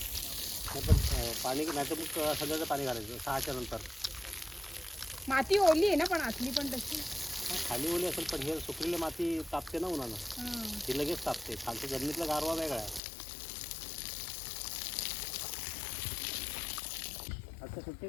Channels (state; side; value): drops out; right; at 13.0 s